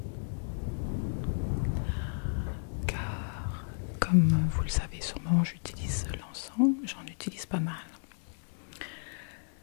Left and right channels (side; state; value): right; silent; digital silence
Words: Car, comme vous le savez sûrement, j'utilise l'encens. J'en utilise pas mal.